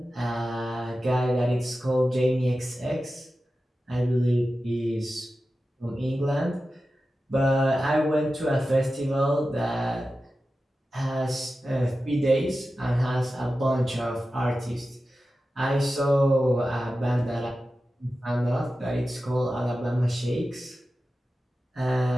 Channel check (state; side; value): normal; both; correlation 0.93